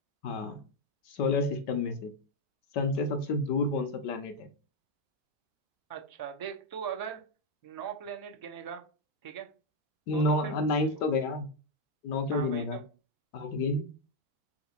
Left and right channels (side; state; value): right; late; 5.2 ms